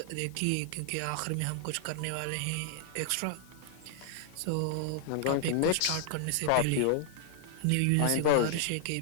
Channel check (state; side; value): different; both; correlation 0.00